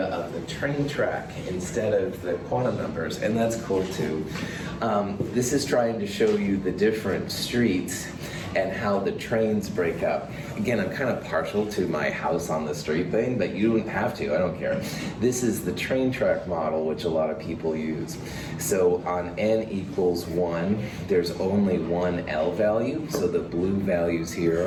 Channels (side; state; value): both; identical; correlation 1.00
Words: of the train track instead of the quantum numbers, and that's cool too. This is trying to show you the different streets and how the trains break up. Again, I'm kind of partial to my house on the street thing, but you don't have to, I don't care. This is the train track model, which a lot of people use. So on n equals 1, there's only one L value, so the blue values